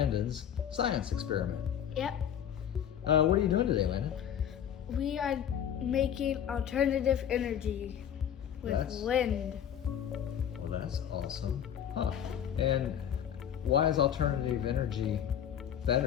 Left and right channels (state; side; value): quieter; right; 9.3 dB